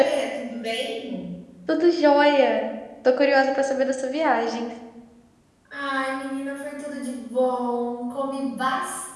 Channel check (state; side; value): identical; both; correlation 1.00